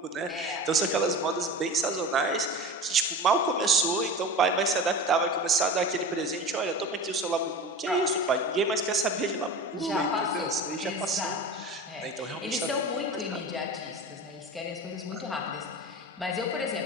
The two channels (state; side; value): normal; both; correlation 0.32